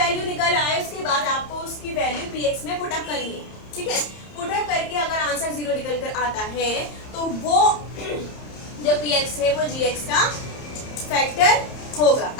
निकल आए उसके बाद आपको उसकी वैल्यू px में पुट अप करनी है, ठीक है। पुट अप करके अगर आंसर 0 निकल कर आता है तो वो जो px है वो gx का फैक्टर होगा,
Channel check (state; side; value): late; right; 30 ms